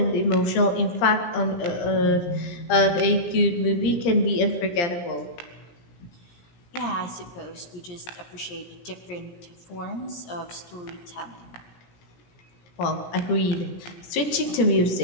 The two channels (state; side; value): late; right; 17 ms